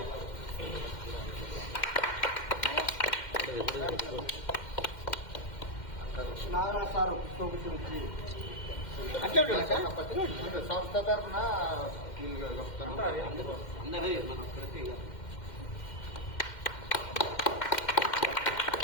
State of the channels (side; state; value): right; late; 2.1 ms